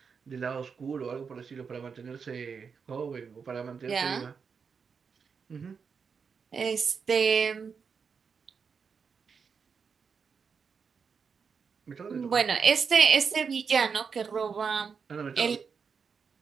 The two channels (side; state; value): left; quieter; 5.9 dB